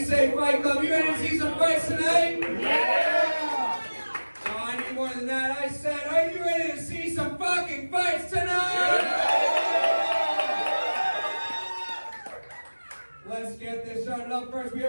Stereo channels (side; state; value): both; inverted; correlation -1.00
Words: say, Fight Club? You ready to see some fights tonight? Yeah! Oh, I need more than that. I said, are you ready to see some fucking fights tonight? starting up first. We